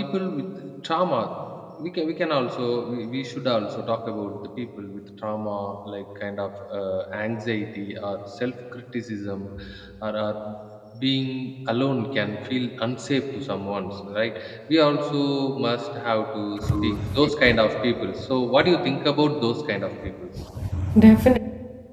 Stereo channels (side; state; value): both; identical; correlation 1.00